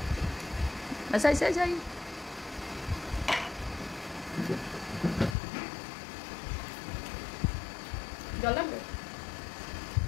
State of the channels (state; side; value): drops out; right; at 5.4 s